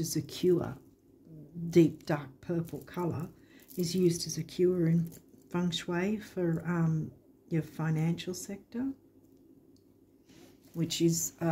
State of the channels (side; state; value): both; identical; correlation 1.00